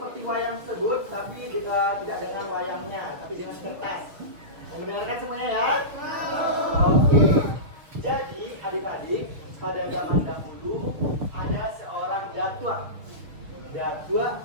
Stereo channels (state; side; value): late; left; 6.5 ms